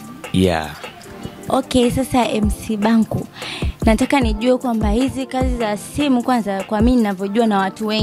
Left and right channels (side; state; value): both; identical; correlation 1.00